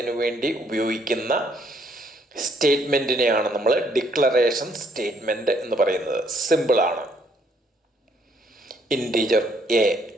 വേണ്ടി ഉപയോഗിക്കുന്ന സ്റ്റേറ്റ്മെൻറ്റിനെയാണ് നമ്മൾ ഡിക്ലറേഷൻ സ്റ്റേറ്റ്മെൻറ്റ് എന്ന് പറയുന്നത്. സിമ്പിളാണ്. ഇൻറ്റീജർ എ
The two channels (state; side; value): normal; both; correlation 0.67